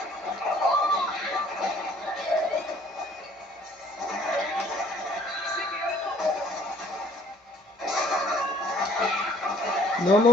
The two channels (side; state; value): both; normal; correlation 0.58